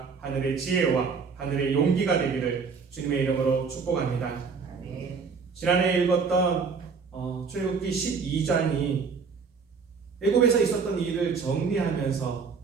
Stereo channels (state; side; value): quieter; left; 5.3 dB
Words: 하늘의 지혜와 하늘의 용기가 되기를 주님의 이름으로 축복합니다. 아멘. 지난해 읽었던 출애굽기 12장이 애굽에서 있었던 일을 정리하면서